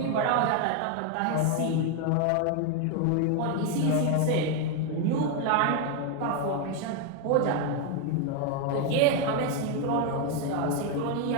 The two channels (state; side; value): different; both; correlation 0.01